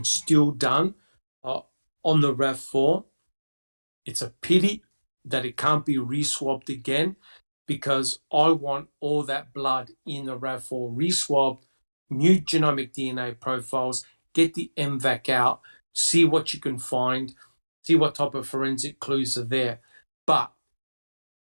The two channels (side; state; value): both; inverted; correlation -1.00